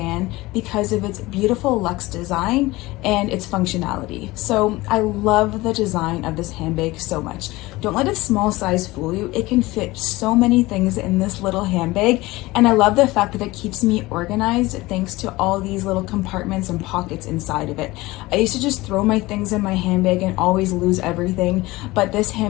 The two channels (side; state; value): right; quieter; 20.1 dB